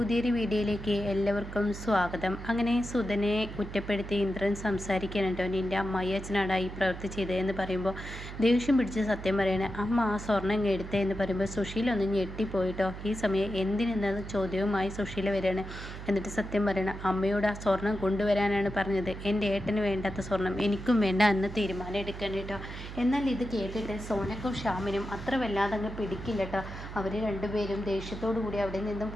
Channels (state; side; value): noise; right; hum, 10 dB below the sound